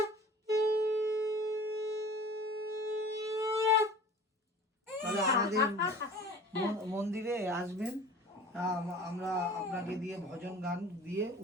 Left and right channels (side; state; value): both; normal; correlation 0.42